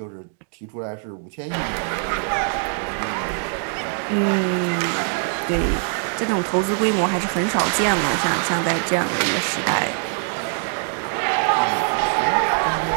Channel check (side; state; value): left; silent; 57 dB below the other